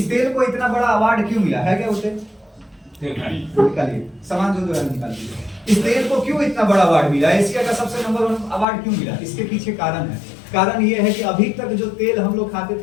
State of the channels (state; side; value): drops out; right; at 8.7 s